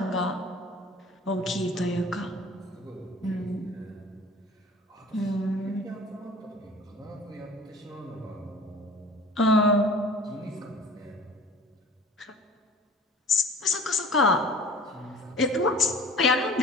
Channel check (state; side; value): normal; both; correlation 0.45